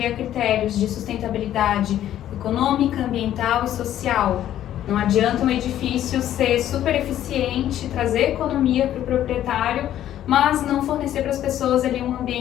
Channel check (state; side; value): quieter; right; 11.8 dB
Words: a critérios de sustentabilidade econômica, ambiental e social. Não adianta um edifício ser super eficiente, trazer economia para o proprietário, mas não fornecer para as pessoas ali um